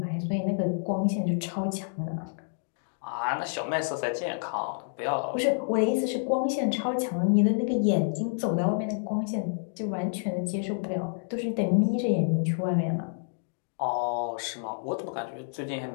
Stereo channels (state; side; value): silent; right; digital silence